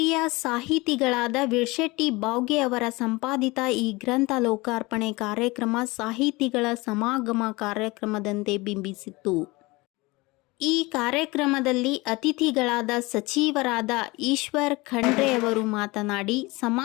ಸಾಹಿತಿಗಳಾದ ವಿಳ್ಶೆಟ್ಟಿ ಬಾವ್ಗೆ ಅವರ ಸಂಪಾದಿತ ಈ ಗ್ರಂಥ ಲೋಕಾರ್ಪಣೆ ಕಾರ್ಯಕ್ರಮ ಸಾಹಿತಿಗಳ ಸಮಾಗಮ ಕಾರ್ಯಕ್ರಮದಂತೆ ಬಿಂಬಿಸಿತ್ತು. ಈ ಕಾರ್ಯಕ್ರಮದಲ್ಲಿ ಅತಿಥಿಗಳಾದ ಸಚಿವರಾದ ಈಶ್ವರ್ ಖಂಡ್ರೆ ಅವರು ಮಾತನಾಡಿ,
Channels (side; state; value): right; quieter; 23.1 dB